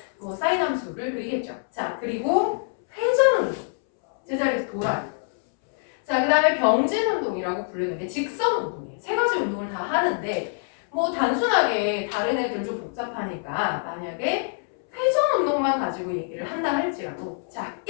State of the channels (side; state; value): right; silent; 62 dB below the other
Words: 뭐 사인 함수를 그리겠죠. 자, 그리고 회전 운동, 제자리에서 돌아요. 자, 그 다음에 병진 운동이라고 부르는 게 직선 운동이에요. 세 가지 운동을 다 하는데 뭐 단순하게 다른 애들 좀 복잡하니까 만약에 회전 운동만 가지고 얘기를 한다 할지라도 자,